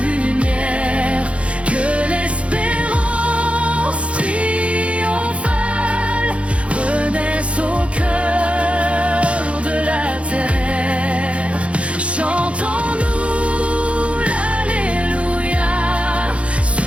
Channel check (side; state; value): left; late; 0.062 ms